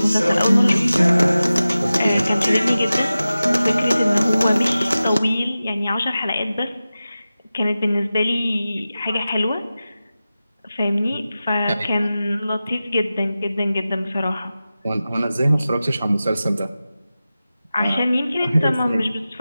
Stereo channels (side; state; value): both; inverted; correlation -0.95